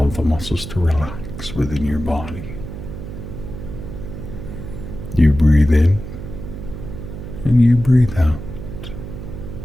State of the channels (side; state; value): right; noise; hum, 9 dB below the sound